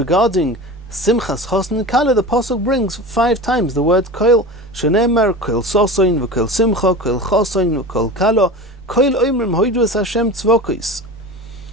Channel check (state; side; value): normal; both; correlation 0.32